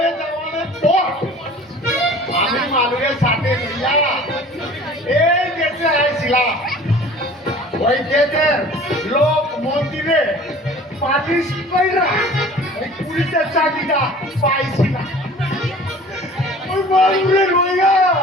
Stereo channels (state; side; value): normal; both; correlation 0.45